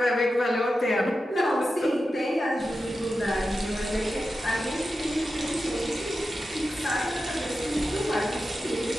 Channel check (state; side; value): normal; both; correlation 0.91